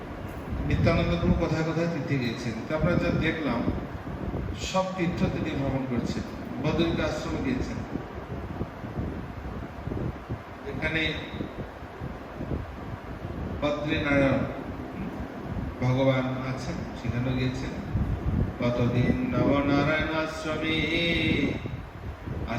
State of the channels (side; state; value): both; identical; correlation 1.00